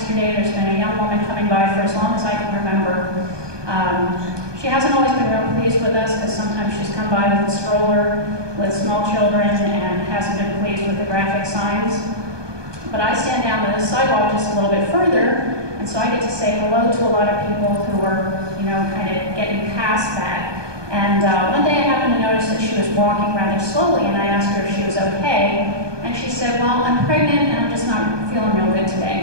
there's been a young woman coming by for as long as I can remember. She hasn't always been real pleased with us because sometimes she's come by with a stroller with small children and hasn't been pleased with the graphic signs. But I stand down the sidewalk just a little bit further, and so I get to say hello to a lot of people who are, kind of getting past that. And one day I happened to notice that she was walking rather slowly, and I asked her if she was okay. And she said, well, I'm pregnant and I'm just not feeling real good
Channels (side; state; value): left; late; 1.2 ms